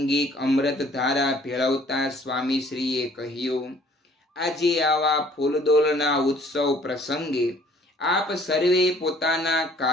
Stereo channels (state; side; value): normal; both; correlation 0.57